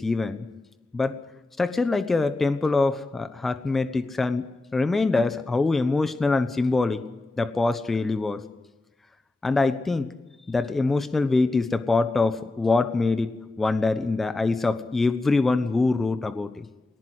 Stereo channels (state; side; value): quieter; right; 3.1 dB